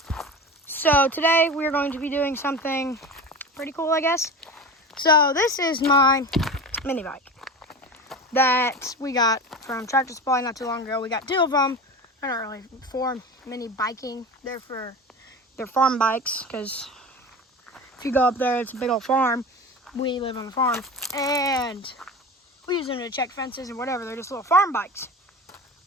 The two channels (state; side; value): normal; both; correlation 0.30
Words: So today we're going to be doing something pretty cool, I guess. So this is my mini bike that we got from Tractor Supply not too long ago. We got two of them. They're not really for mini biking. They're farm bikes, because if you go up there, it's a big old farm. We live on the farm, and we use them to check fences and whatever. They're just little farm bikes.